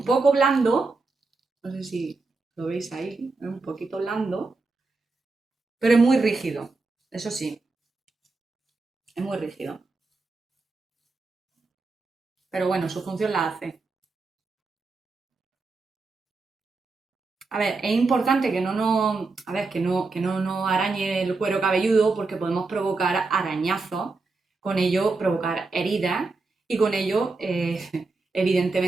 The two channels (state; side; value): quieter; left; 3.8 dB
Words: poco blando. No sé si lo veis ahí. Es un poquito blando. Pero es muy rígido. Eso sí, es muy rígido. Pero bueno, su función la hace. A ver, es importante que no nos, a ver, que no nos arañe el cuero cabelludo porque podemos provocar arañazos, con ello provocar heridas y con ello,